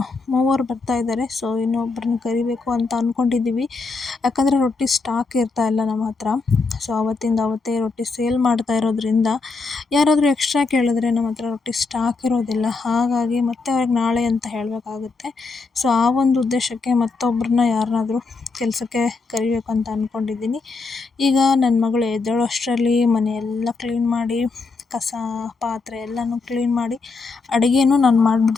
ಮೂವರು ಬರ್ತಾ ಇದ್ದಾರೆ. ಸೊ ಇನ್ನೊಬ್ಬರನ್ನ ಕರಿಬೇಕು ಅಂತ ಅಂದ್ಕೊಂಡಿದ್ದೀವಿ. ಯಾಕಂದರೆ ರೊಟ್ಟಿ ಸ್ಟಾಕ್ ಇರ್ತಾ ಇಲ್ಲ ನಮ್ಮ ಹತ್ರ. ಸೊ ಅವತ್ತಿಂದ ಅವತ್ತೇ ರೊಟ್ಟಿ ಸೇಲ್ ಮಾಡ್ತಾ ಇರೋದ್ರಿಂದ ಯಾರಾದರೂ ಎಕ್ಸ್ಟ್ರಾ ಕೇಳಿದ್ರೆ ನಮ್ಮ ಹತ್ರ ರೊಟ್ಟಿ ಸ್ಟಾಕ್ ಇರೋದಿಲ್ಲ. ಹಾಗಾಗಿ ಮತ್ತೆ ಅವ್ರಿಗೆ ನಾಳೆ ಅಂತ ಹೇಳಬೇಕಾಗುತ್ತೆ. ಸೊ ಆ ಒಂದು ಉದ್ದೇಶಕ್ಕೆ ಮತ್ತೊಬ್ಬರನ್ನ ಯಾರನ್ನಾದ್ರೂ ಕೆಲಸಕ್ಕೆ ಕರಿಬೇಕು ಅಂತ ಅಂದ್ಕೊಂಡಿದ್ದೀನಿ. ಈಗ ನನ್ನ ಮಗಳು ಎದ್ದೇಳೋಷ್ಟರಲ್ಲಿ ಮನೆಯೆಲ್ಲ ಕ್ಲೀನ್ ಮಾಡಿ, ಕಸ ಪಾತ್ರೆ ಎಲ್ಲನೂ ಕ್ಲೀನ್ ಮಾಡಿ ಅಡುಗೆನೂ ನಾನು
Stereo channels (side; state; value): right; quieter; 4.1 dB